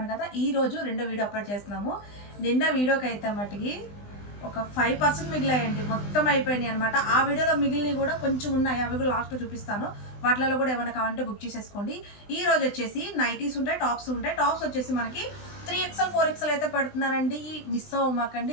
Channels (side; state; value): right; late; 20 ms